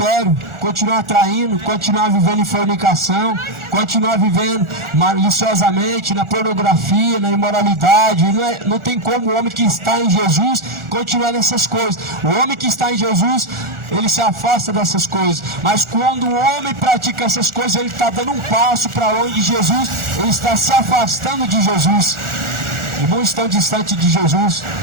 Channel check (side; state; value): left; late; 1.4 ms